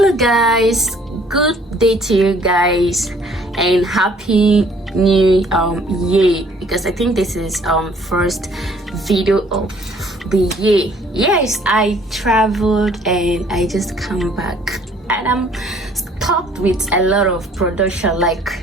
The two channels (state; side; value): normal; both; correlation 0.58